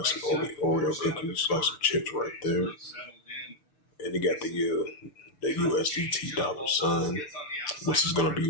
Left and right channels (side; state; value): right; late; 6.8 ms